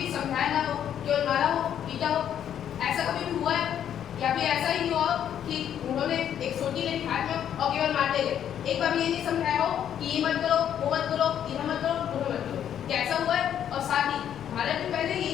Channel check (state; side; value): quieter; right; 9.7 dB